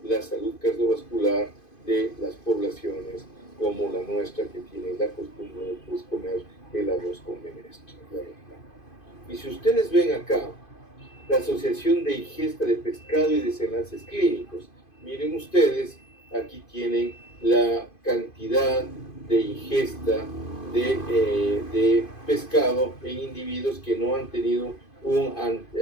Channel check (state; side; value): late; right; 2.5 ms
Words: la salud cardiovascular de las poblaciones como la nuestra, que tienen la costumbre de pues, comer el arroz con menestra. Y si ustedes ven acá la asociación de ingesta de pescado y desenlaces clínicos, miren ustedes, aquí tienen la cantidad de ingesta de pescado en individuos que no han tenido un